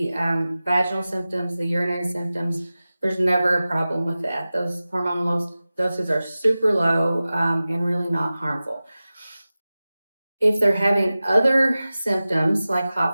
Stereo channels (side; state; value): both; inverted; correlation -0.96